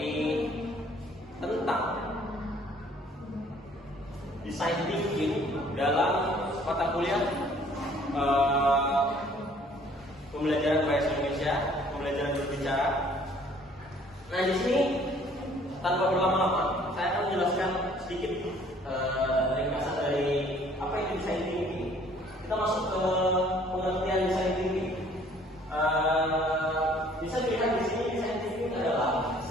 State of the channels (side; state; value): both; normal; correlation 0.57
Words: tentang design thinking dalam mata kuliah pembelajaran bahasa Indonesia, pembelajaran berbicara. Nah, di sini tanpa berlama-lama, saya akan menjelaskan sedikit ringkasan dari apa itu design thinking. Kita masuk ke pengertian design thinking. Bisa dilihat di sini design thinking adalah